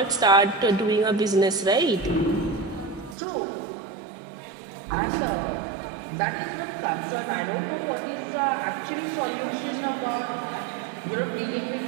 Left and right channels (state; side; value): drops out; left; at 3.2 s